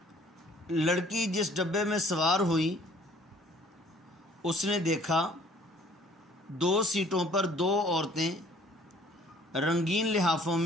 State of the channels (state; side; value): normal; both; correlation 0.57